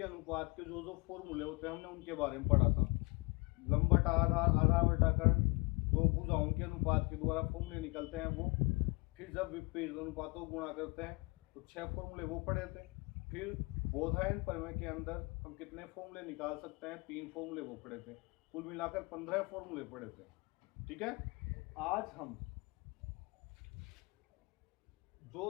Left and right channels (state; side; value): quieter; right; 28.3 dB